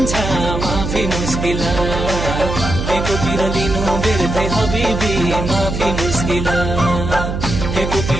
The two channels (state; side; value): noise; right; hum, 4 dB below the sound